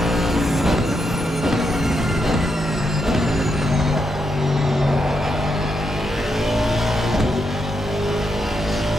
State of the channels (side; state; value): both; normal; correlation 0.82